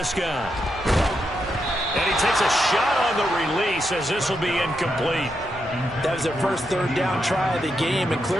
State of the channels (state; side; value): normal; both; correlation 0.83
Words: And he takes a shot on the release as this will be incomplete. That was their first 3rd down try of the game, and